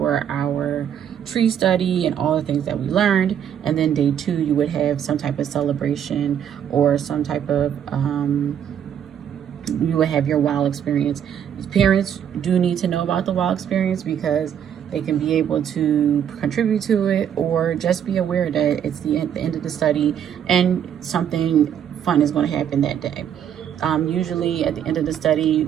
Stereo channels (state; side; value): quieter; left; 9.1 dB